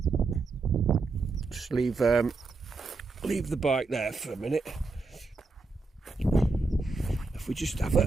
Just leave the bike there for a minute. If we just have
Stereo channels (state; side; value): quieter; left; 3.9 dB